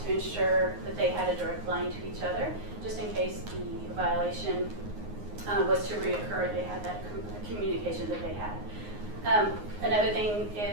to ensure that they had a direct line to each other, just in case the violation was to reoccur. They had that communication that they had. Another thing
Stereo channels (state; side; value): late; left; 9.6 ms